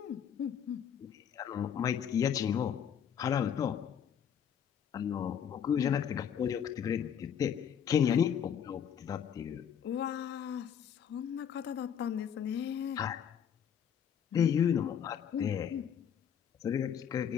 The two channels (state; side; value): quieter; right; 8.4 dB